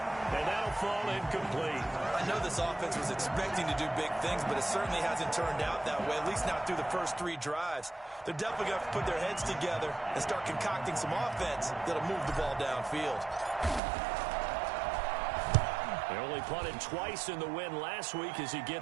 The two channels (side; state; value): left; drops out; at 13.8 s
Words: that'll fall incomplete. I know this offense was expecting to do big things, but it certainly hasn't turned out that way, at least not through the first 3 drives. They're definitely going to have to put their heads together and start concocting some offense that'll move the ball downfield. They only punted twice in the win last week as he